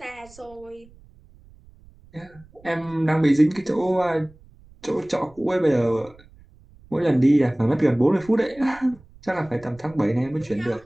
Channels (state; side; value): noise; right; rumble, 25 dB below the sound